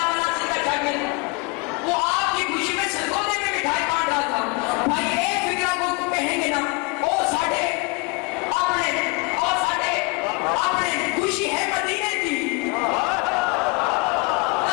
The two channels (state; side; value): quieter; right; 28.9 dB